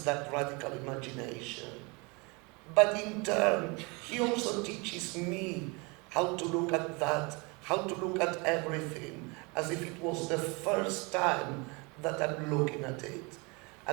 that radical imagination. But in turn, he also teaches me how to look at that, how to look at everything as if it was the first time that I'm looking at it.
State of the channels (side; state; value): left; quieter; 28.6 dB